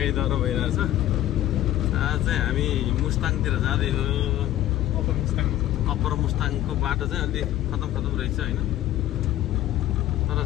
डह्रो भइरहेछ। आज चाहिँ हामी मुस्ताङतिर जाँदै हो। अप्पर मुस्ताङको बाटो चाहिँ अलि खतम रहेछ होइन, तर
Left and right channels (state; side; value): quieter; right; 13.8 dB